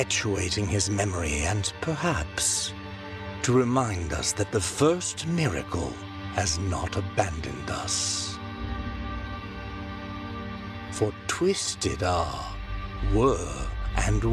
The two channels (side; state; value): both; identical; correlation 1.00